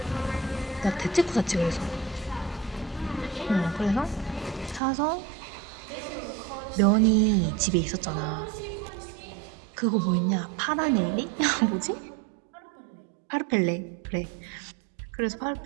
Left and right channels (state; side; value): drops out; left; at 4.8 s